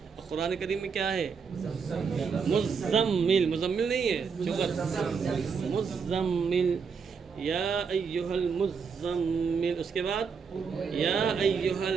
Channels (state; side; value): quieter; left; 5.8 dB